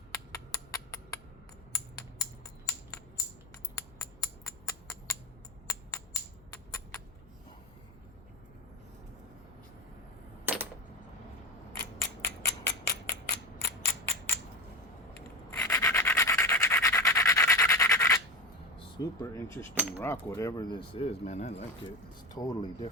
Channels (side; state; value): left; noise; hum, 26 dB below the sound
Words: Super interesting rock, whatever this is, man. I like it. It's totally